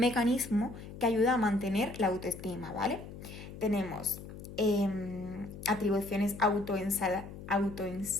que ayuda a mantener la autoestima, ¿vale? Tenemos atribuciones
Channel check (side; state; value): left; noise; hum, 13 dB below the sound